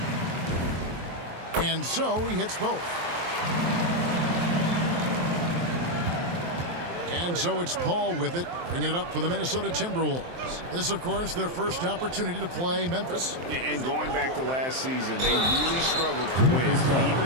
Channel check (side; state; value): left; late; 23 ms